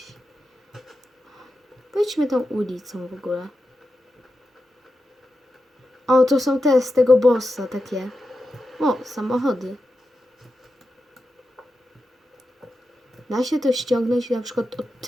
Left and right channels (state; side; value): normal; both; correlation 0.89